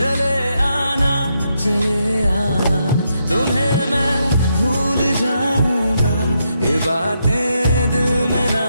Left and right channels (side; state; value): both; inverted; correlation -0.80